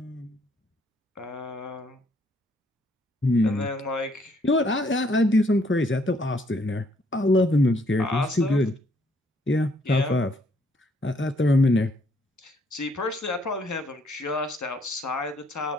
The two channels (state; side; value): normal; both; correlation 0.68